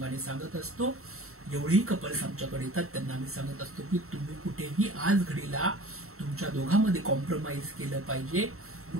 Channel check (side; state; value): left; late; 0.63 ms